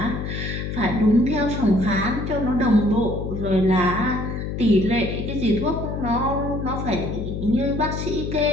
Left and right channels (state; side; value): noise; left; hum, 4 dB below the sound